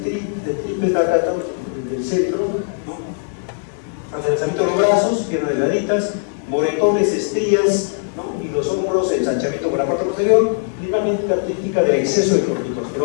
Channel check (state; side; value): silent; right; digital silence